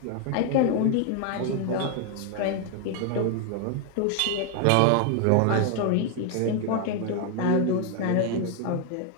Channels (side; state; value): both; different; correlation 0.01